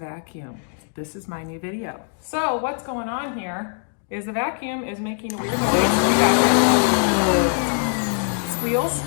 This is my new video. So what's going on here is the vacuum is making a weird noise. You got it. Squeals,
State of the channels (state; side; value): silent; right; 57 dB below the other